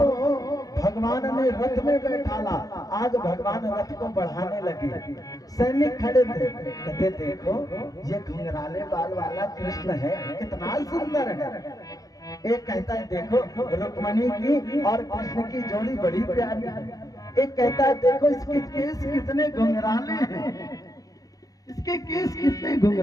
भगवान ने रथ में बैठाला, आज भगवान रथ को बढ़ाने लगे। सैनिक खड़े थे, कहते देखो ये घुंघराले बाल वाला कृष्ण है, कितना सुंदर है। एक कहता है देखो रुक्मिणी की और कृष्ण की जोड़ी बड़ी प्यारी है। एक कहता है देखो इसके केस कितने घुंघराले हैं, इसके केस कितने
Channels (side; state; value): right; late; 0.18 ms